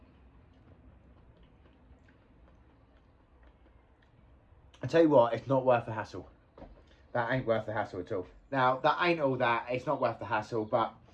I tell you what, it's not worth the hassle. That ain't worth the hassle at all. Now, that ain't all that. It's not worth the hassle, but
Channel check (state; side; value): identical; both; correlation 1.00